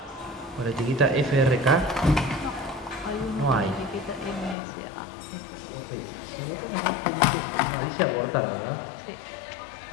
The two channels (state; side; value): drops out; right; at 4.5 s